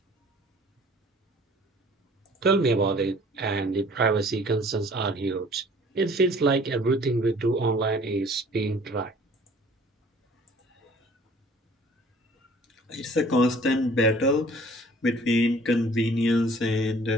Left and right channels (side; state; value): both; normal; correlation 0.52